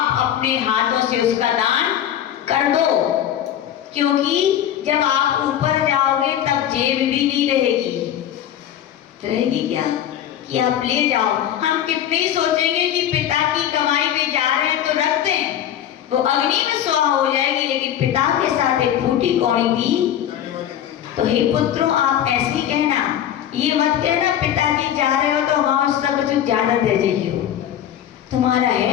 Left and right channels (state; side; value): quieter; right; 10.7 dB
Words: अपने हाथों से उसका दान कर दो। क्योंकि जब आप ऊपर जाओगे तब जेब भी नहीं रहेगी क्या? कि आप ले जाओ। हम कितने ही सोचेंगे कि पिता की कमाई में जा रहे हैं तो रख दें, वो अग्नि में स्वाहा हो जाएगी, लेकिन पिता के साथ एक फूटी कौड़ी भी। तो हे पुत्रों, आप ऐसे ही कहना, ये मत कहना पिताजी जा रहे हो तो वहां उसका कुछ ज्यादा दे जाइए। तुम्हारा